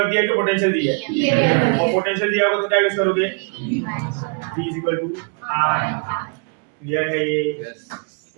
दिया है कि पोटेंशियल दिया है? और पोटेंशियल दिया होगा तो क्या यूज करोगे? V is equal to R। Clear है ये?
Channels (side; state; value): left; quieter; 39.4 dB